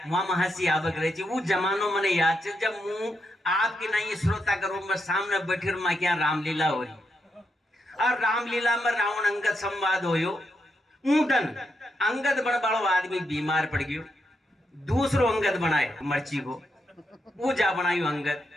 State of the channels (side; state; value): both; normal; correlation 0.82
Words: वहां महसी आवक रही थी। वो जमानो मैंने याद है जब मुंह आपके नहीं श्रोता करूं मैं सामने बैठे माँ क्या रामलीला हो रही, और रामलीला में रावण अंगद संवाद होयो। ऊटन अंगद बड़ बड़ो आदमी बीमार पड़ गयो, दूसरो अंगद बनाए मर्ची को, वो जा बनायो अंगद।